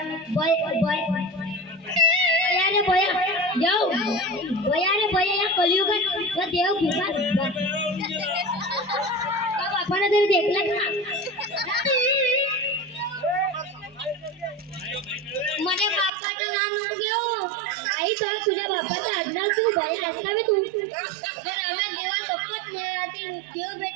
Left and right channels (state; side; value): drops out; left; at 16.1 s